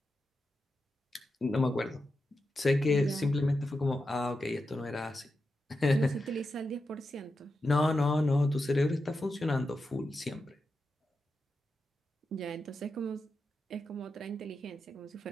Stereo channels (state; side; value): normal; both; correlation 0.89